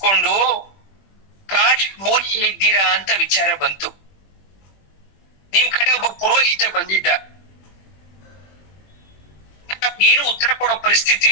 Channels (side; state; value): right; late; 21 ms